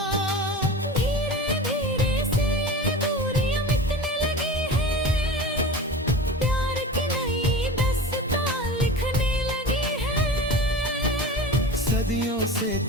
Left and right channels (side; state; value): both; normal; correlation 0.33